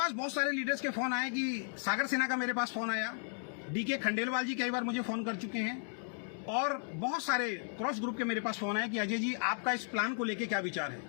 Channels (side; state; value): right; silent; 55 dB below the other